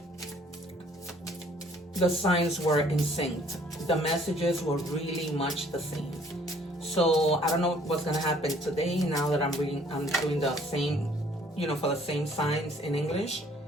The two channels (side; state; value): both; normal; correlation 0.59